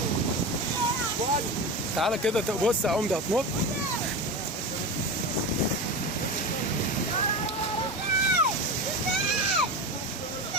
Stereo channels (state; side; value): normal; both; correlation 0.24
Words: تعالى كده بص يا عمده هتنط.